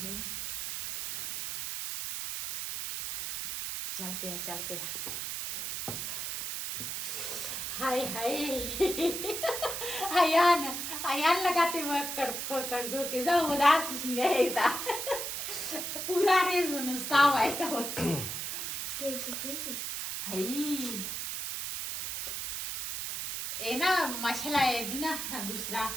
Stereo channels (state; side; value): noise; right; hiss, 4 dB below the sound